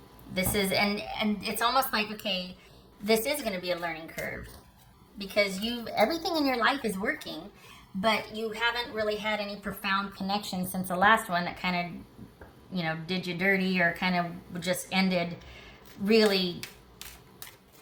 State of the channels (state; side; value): identical; both; correlation 1.00